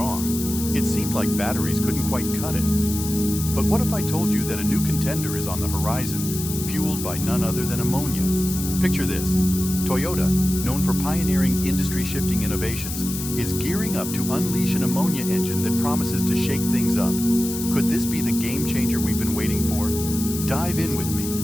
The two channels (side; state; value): left; noise; hiss, 7 dB below the sound